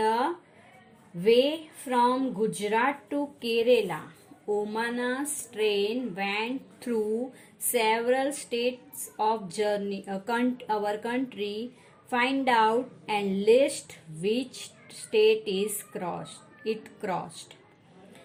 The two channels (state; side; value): identical; both; correlation 1.00